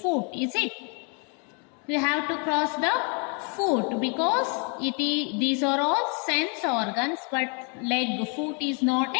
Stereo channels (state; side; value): quieter; right; 36.8 dB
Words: foot. Is it? You have to cross the foot because these are all sense organs, but leg, foot is not